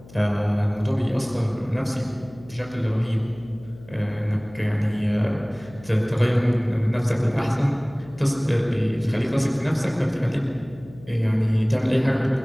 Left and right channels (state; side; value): noise; left; hum, 21 dB below the sound